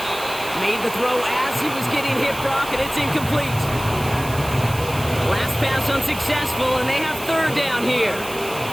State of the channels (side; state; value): right; noise; hiss, 12 dB below the sound